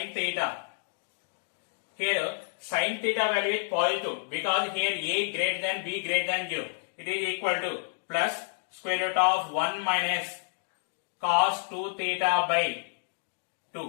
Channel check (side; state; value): right; silent; digital silence